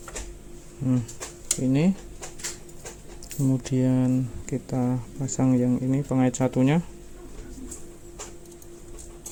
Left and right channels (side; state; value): both; identical; correlation 1.00